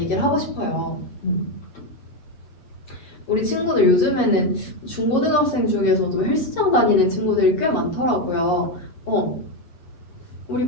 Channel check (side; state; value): right; late; 7.3 ms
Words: 하고 싶어요. 우리 친구들 요즘에는 중고등학생 중에서도 헬스장 다니는 친구들이 꽤 많더라고요. 우리